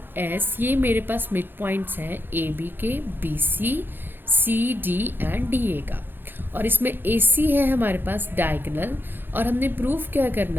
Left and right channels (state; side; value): late; left; 0.099 ms